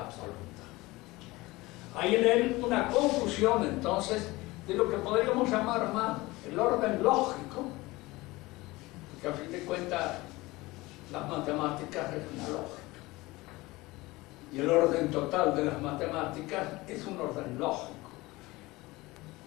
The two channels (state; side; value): quieter; right; 20.9 dB